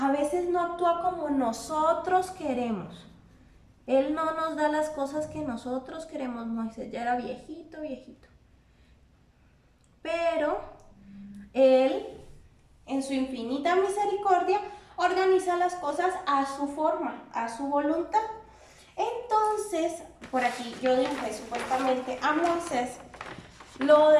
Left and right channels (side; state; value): both; identical; correlation 1.00